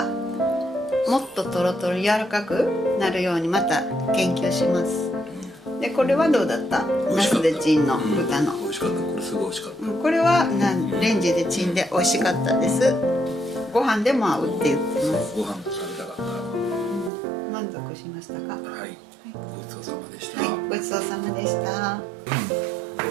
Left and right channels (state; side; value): drops out; left; at 17.1 s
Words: もっとトロトロ柔らかくなるようにまた研究します。でこれはどうだった？ナスでチンの豚の。美味しかった。これすごい美味しかった。これはレンジでチンで美味しかったです。ご飯でも合うって言ってます。ご飯と食べたかった。満足しましたか？はい。ごちそうさまでした。はい、ごちそうさまでした。ご